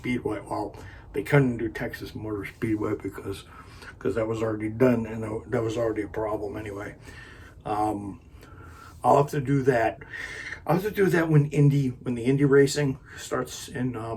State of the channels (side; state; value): both; identical; correlation 1.00